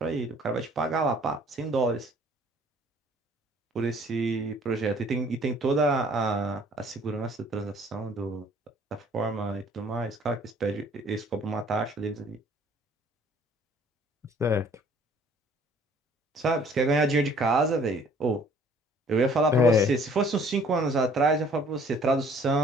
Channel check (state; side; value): normal; both; correlation 0.57